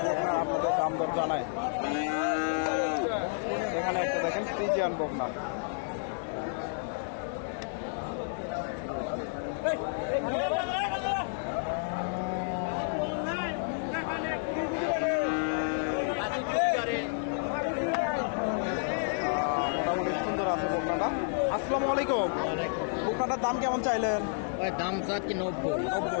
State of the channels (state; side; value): silent; right; digital silence